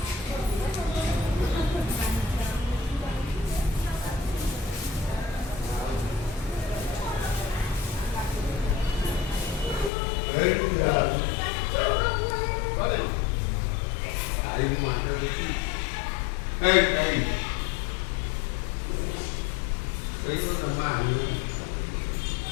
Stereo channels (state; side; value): drops out; right; at 9.9 s